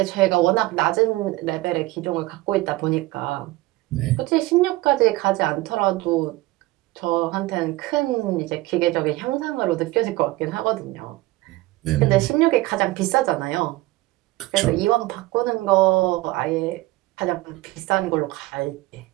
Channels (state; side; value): quieter; left; 19.4 dB